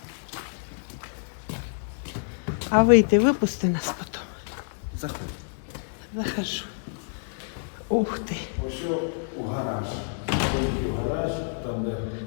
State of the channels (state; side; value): silent; right; 60 dB below the other